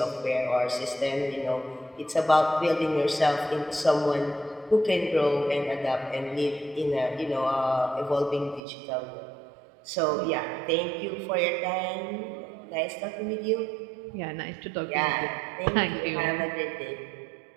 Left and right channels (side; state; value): left; drops out; at 8.6 s